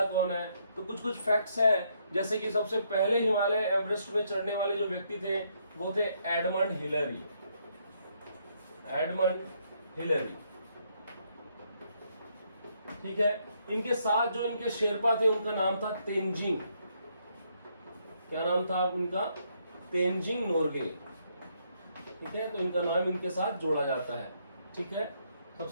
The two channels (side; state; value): both; inverted; correlation -0.73